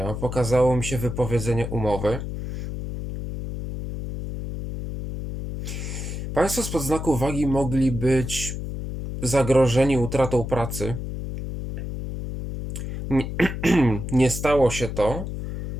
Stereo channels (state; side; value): noise; left; hum, 6 dB below the sound